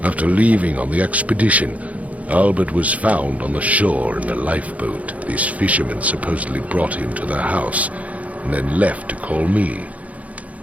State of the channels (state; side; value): late; left; 0.069 ms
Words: After leaving on the expedition, Albert was found on the shore in a lifeboat. These fishermen supposedly brought him to their house, and then left to call me.